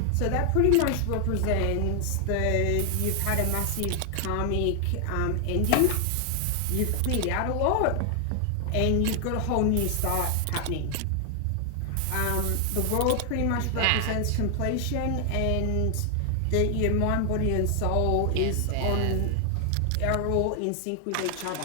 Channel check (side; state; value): both; different; correlation 0.00